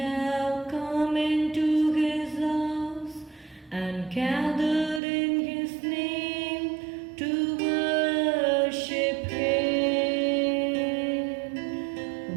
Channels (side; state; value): left; drops out; at 5.0 s